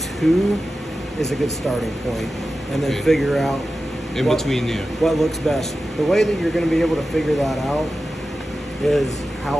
2 is a good starting point, and then Okay. figure out In between there. what looks best. The way that you're going to be able to figure that out is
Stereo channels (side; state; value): both; normal; correlation 0.93